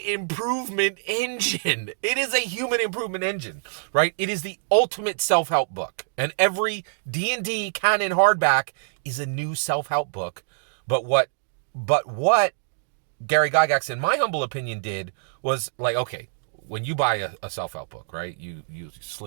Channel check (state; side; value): silent; left; digital silence